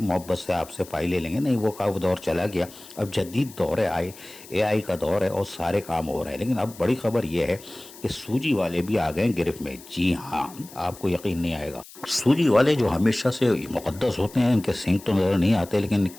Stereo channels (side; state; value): left; noise; hiss, 19 dB below the sound